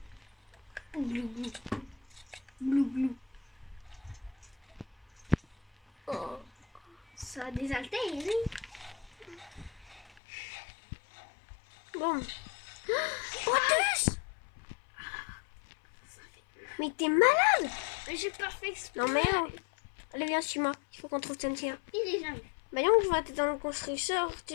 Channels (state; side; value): drops out; right; at 10.2 s